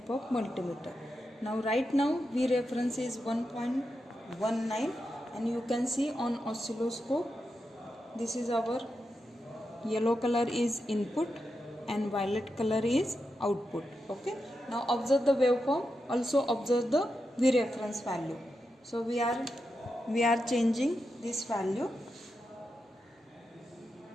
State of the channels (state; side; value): normal; both; correlation 0.87